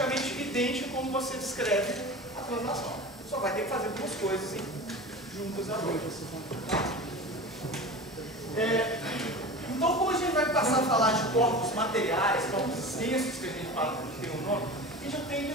idêntico como você descreve a translação. Só vai ter que fazer duas coisas juntas agora. Então, como a gente vai passar a falar de corpos materiais, corpos extensos, que a gente fala que tem um nome, a gente tem que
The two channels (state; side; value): normal; both; correlation 0.32